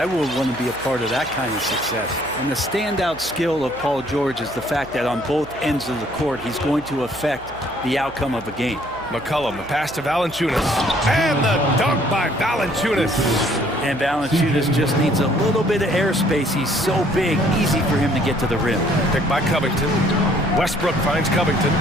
would want to be a part of that kind of success. And the standout skill of Paul George is the fact that on both ends of the court, he's going to affect the outcome of a game. McCollum, the pass to Valanciunas. And the dunk by Valanciunas. And Valanciunas just needs a little bit of airspace. He's so big, easy for him to get to the rim. Picked by Covington. Westbrook finds Covington.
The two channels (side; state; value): right; noise; hum, 20 dB below the sound